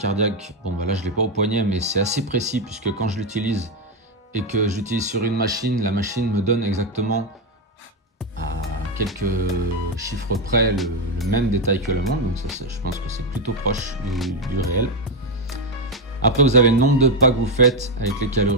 bon bah là je l'ai pas au poignet, mais c'est assez précis puisque quand je l'utilise et que j'utilise sur une machine, la machine me donne exactement à quelques chiffres près le même détail que la montre, donc ça, je pense que c'est plutôt proche du réel. Après, vous avez le nombre de pas que vous faites avec les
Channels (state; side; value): normal; both; correlation 0.06